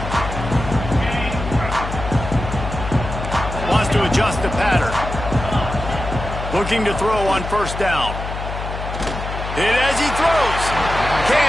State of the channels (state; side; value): noise; left; hum, 7 dB below the sound